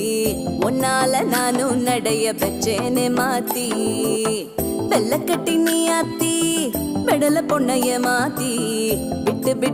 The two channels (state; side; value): identical; both; correlation 1.00